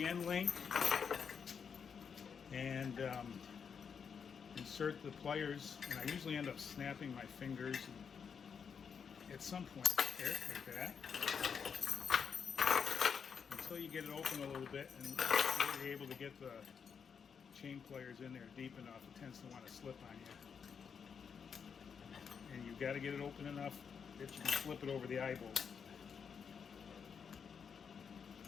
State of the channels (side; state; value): right; quieter; 6.6 dB